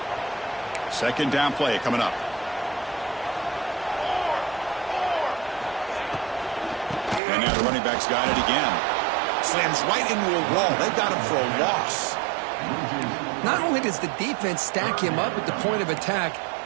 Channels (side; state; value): left; drops out; at 7.2 s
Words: 2nd down play coming up. And now the running back's got it again. Slams right into a wall. They got him for a loss. Not only does the defense stack him up at the point of attack,